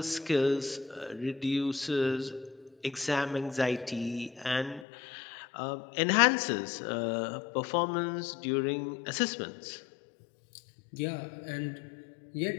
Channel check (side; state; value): right; drops out; at 4.9 s